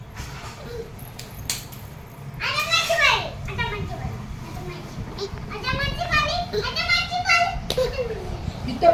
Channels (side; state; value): both; identical; correlation 1.00